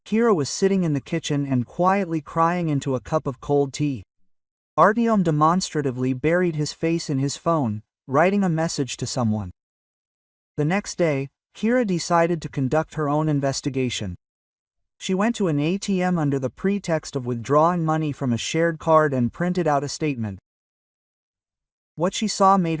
Kira was sitting in the kitchen and quietly crying into a cup of cold tea. Artyom demonstratively buried his face in his phone, writing a message to someone. The next day, Kira decided to conduct her own investigation. She went to an ATM under the pretext of withdrawing money from a shared card and printed out a statement. What she saw made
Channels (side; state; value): both; identical; correlation 1.00